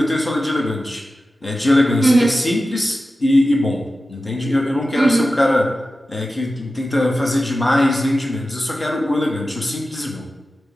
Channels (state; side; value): normal; both; correlation 0.94